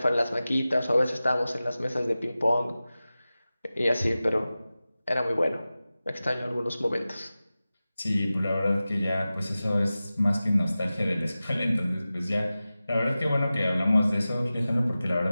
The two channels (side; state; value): both; inverted; correlation -0.96